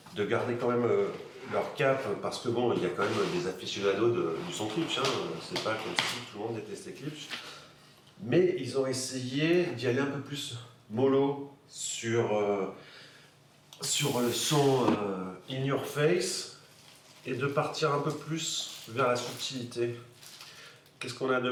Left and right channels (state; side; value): identical; both; correlation 1.00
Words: quand même leur cap, parce que bon, il y a quand même des aficionados du son Klipsch, hein. C'est pas comme si tout le monde détestait Klipsch. Mais ils ont essayé d'y aller un peu plus mollo sur le son in your face et de partir un peu plus vers la subtilité. Qu'est-ce qu'on a de